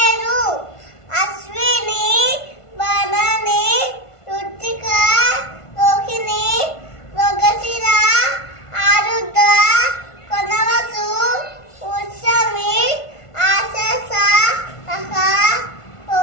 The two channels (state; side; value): late; right; 1.5 ms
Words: అశ్విని భరణి రుచిక రోహిణి మృగశిర ఆరుద్ర కొనవసు ఉత్సవి ఆశస